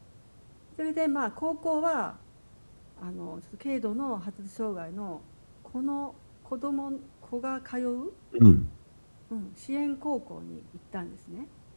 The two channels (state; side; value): inverted; both; correlation -1.00